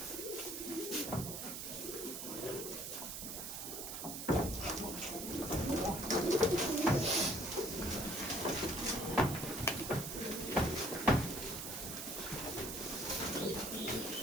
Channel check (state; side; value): noise; right; hiss, 6 dB below the sound